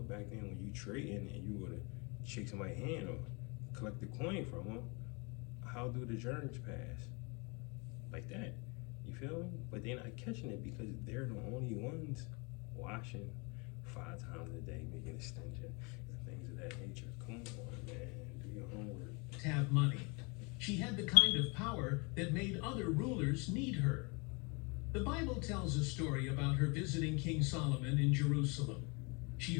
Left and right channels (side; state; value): right; quieter; 30.7 dB